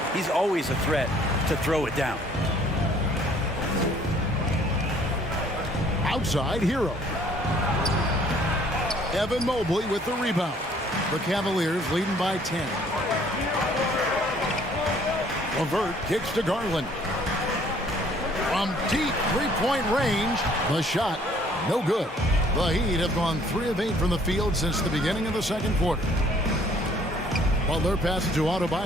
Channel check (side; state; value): both; normal; correlation 0.59